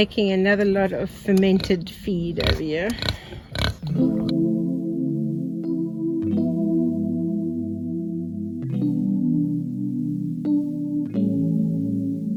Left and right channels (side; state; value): both; identical; correlation 1.00